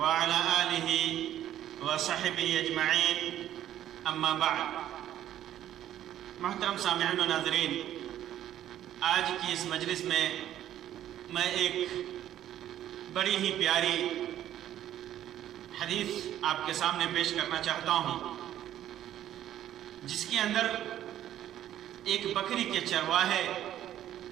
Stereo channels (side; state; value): left; quieter; 11.9 dB